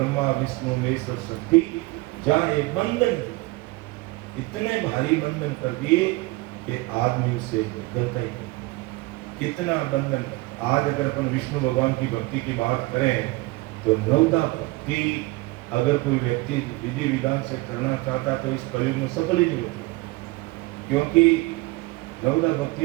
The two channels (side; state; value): left; quieter; 22.2 dB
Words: विष्णु महेश और शक्ति जहां एक बंधन, इतने भारी बंधन कर दिए कि आदमी उससे निकलता ही नहीं। कितना बंधन। आज अगर अपन विष्णु भगवान की भक्ति की बात करें तो नवदा भक्ति अगर कोई व्यक्ति विधि विधान से करना चाहता तो इस कलयुग में सफल ही नहीं होती, क्योंकि नवदा